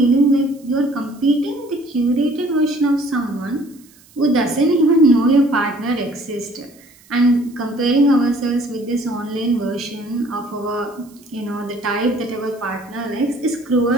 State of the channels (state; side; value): noise; right; hiss, 28 dB below the sound